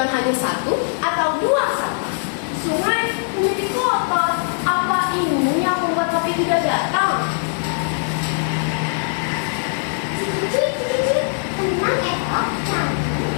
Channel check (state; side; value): silent; right; 65 dB below the other